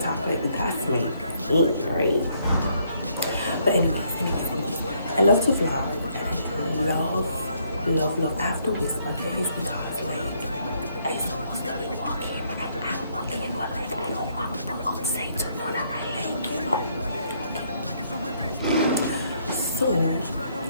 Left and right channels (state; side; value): inverted; both; correlation -0.70